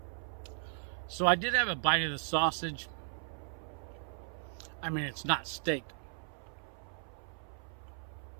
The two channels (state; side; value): silent; left; 53 dB below the other